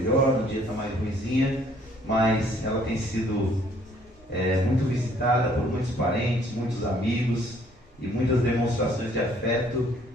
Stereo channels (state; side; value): normal; both; correlation 0.62